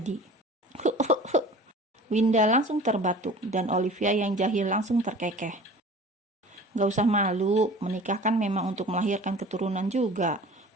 Winda langsung terbatuk dan Olivia yang jahil langsung terkekeh. Gak usah malu, menikah kan memang untuk melahirkan keturunan juga.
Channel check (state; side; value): normal; both; correlation 0.43